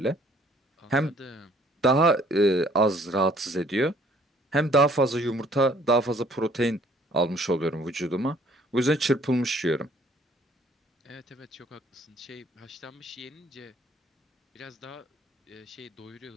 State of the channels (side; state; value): both; normal; correlation 0.59